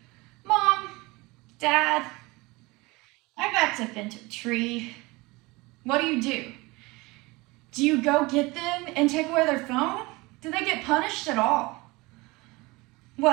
Mom, Dad, I backed up into a tree. What do? Do you go get them and take away their phone? Do they get punished at all?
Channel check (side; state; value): left; quieter; 23.3 dB